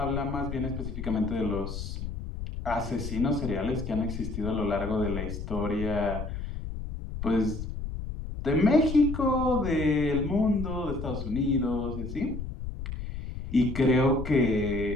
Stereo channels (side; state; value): left; noise; rumble, 7 dB below the sound